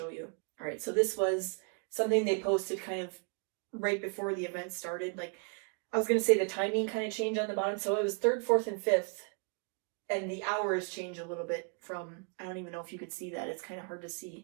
you. All right, so this was something they posted kind of right before the event started. Like, I was going to say the timing kind of changed on the bottom. So it was 3rd, 4th, and 5th. And the hours changed a little bit from, I don't even know if you could see that. It's kind of hard to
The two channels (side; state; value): left; quieter; 37.2 dB